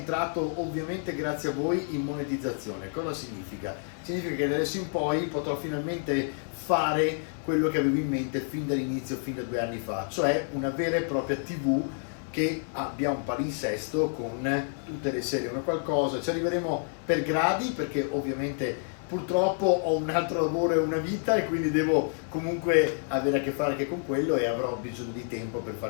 ovviamente grazie a voi in monetizzazione. Cosa significa? Significa che da adesso in poi potrò finalmente fare quello che avevo in mente fin dall'inizio, fin da 2 anni fa, cioè una vera e propria TV che abbia un palinsesto con tutte le serie, una qualcosa. Ci arriveremo per gradi, perché ovviamente purtroppo ho un altro lavoro e una vita e quindi devo comunque avere a che fare anche con quello, e avrò bisogno di tempo per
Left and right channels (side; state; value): right; silent; 57 dB below the other